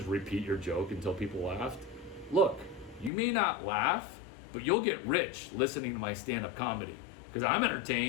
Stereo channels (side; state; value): right; drops out; at 3.1 s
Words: repeat your joke until people laughed? Look, you may not laugh, but you'll get rich listening to my stand-up comedy. Because I'm